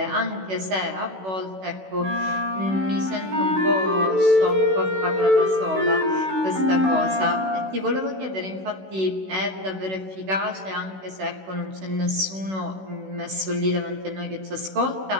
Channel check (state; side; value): late; left; 16 ms